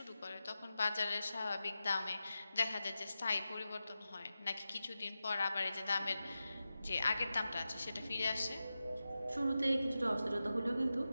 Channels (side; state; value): both; inverted; correlation -0.93